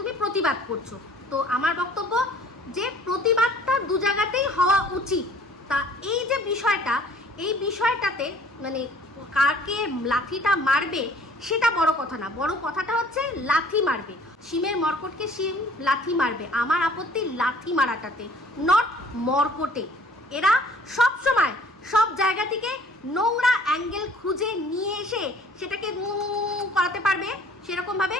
প্রতিবাদ করছো। তো আমার বক্তব্য যে প্রতিবাদটা দু জায়গাতেই হওয়া উচিত। তা এই যে বিষয়টা, এই বিষয়টাতে মানে কাকে লাথিটা মারবে সেটা বড় কথা না, বড় কথাটা হচ্ছে লাথি মারবে। শিমের মর্কটকে শিম লাথি মারবে, আমার আপত্তি লাথি মারাটাতে, নট মর্কটে। এরা সব সময় সব জায়গা থেকে নোংরা অ্যাঙ্গেল খুঁজে নিয়ে এসে সেটাকে করাতে পারবে, সেরকমভাবে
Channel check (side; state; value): both; normal; correlation 0.53